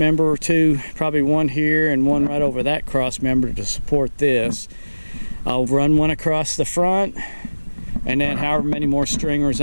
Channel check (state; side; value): inverted; both; correlation -1.00